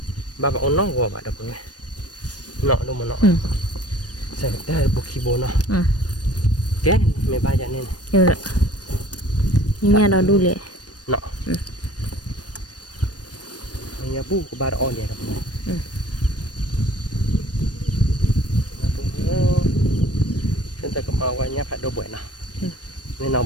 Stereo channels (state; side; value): late; right; 0.69 ms